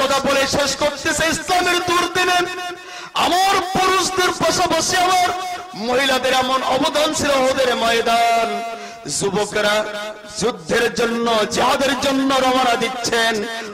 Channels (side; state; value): both; identical; correlation 1.00